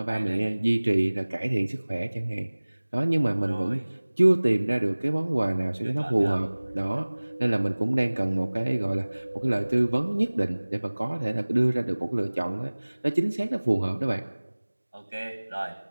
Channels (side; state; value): both; inverted; correlation -1.00